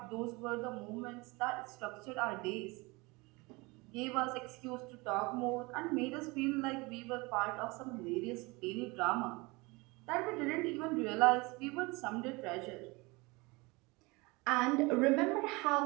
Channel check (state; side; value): quieter; left; 25.1 dB